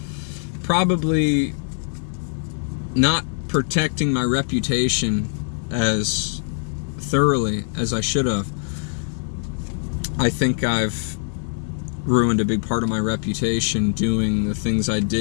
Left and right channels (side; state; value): right; silent; digital silence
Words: probably not protecting my reputation as thoroughly as I should have. I think I've ruined a big part of my reputation doing the things I